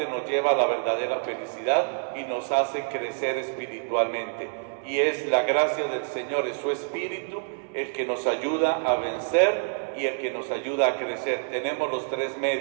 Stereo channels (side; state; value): left; silent; digital silence